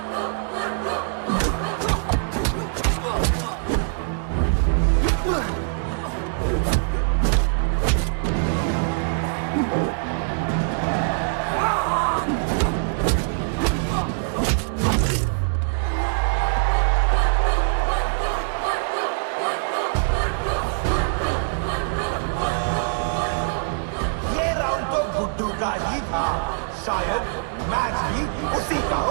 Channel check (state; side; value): silent; left; digital silence